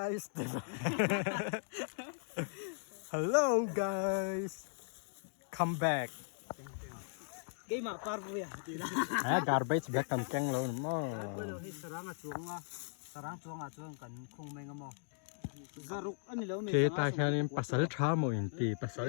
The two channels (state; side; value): silent; right; digital silence